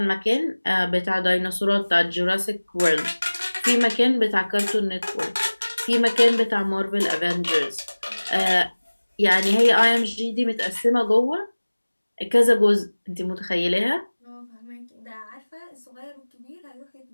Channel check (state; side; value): inverted; both; correlation -1.00